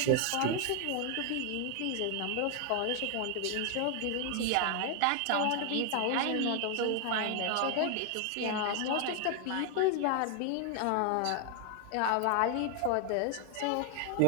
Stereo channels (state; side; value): different; both; correlation 0.00